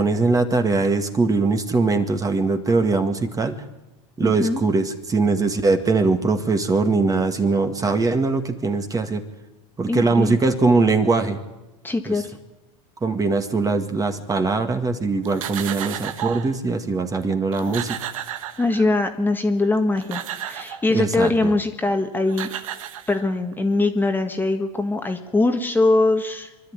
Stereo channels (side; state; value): both; normal; correlation 0.76